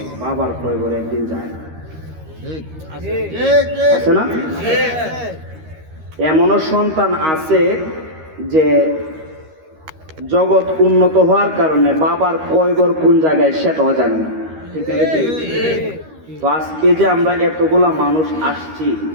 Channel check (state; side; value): late; left; 13 ms